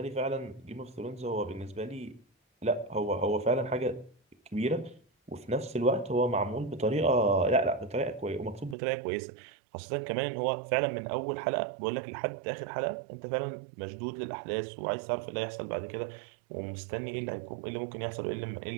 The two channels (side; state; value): left; drops out; at 8.8 s